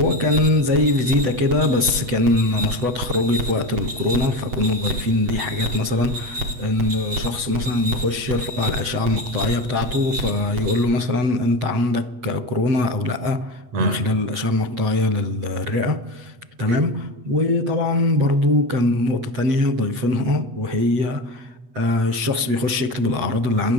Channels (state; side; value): late; left; 8.1 ms